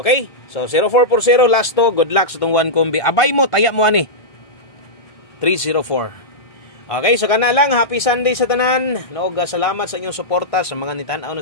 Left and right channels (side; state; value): right; late; 1.5 ms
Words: So 0440 last to, good luck sa tong one combi. Abay mo, taya mo ani. 304. Okay, so kana lang, happy Sunday sa tanan. Noog salamat sa inyong suporta sa mga nitan-aw na